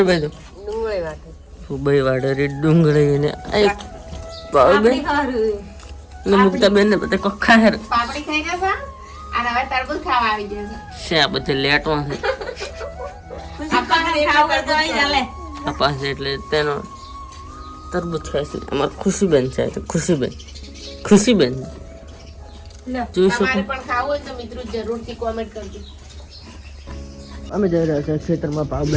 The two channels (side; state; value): both; identical; correlation 1.00